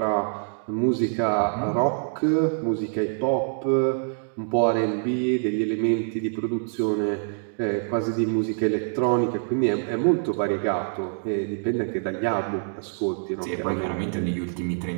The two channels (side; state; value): left; silent; digital silence